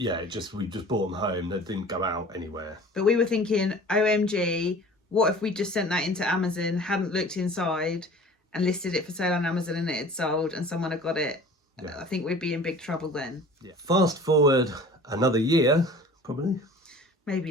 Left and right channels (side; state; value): both; normal; correlation 0.44